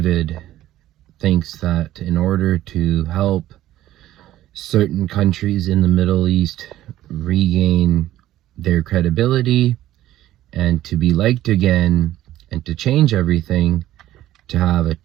thinks that in order to help certain countries in the Middle East regain their credibility and to be liked again and to change everything, to have a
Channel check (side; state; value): left; quieter; 14.0 dB